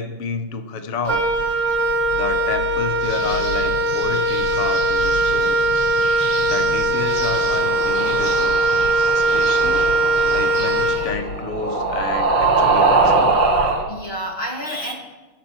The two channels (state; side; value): late; right; 6.3 ms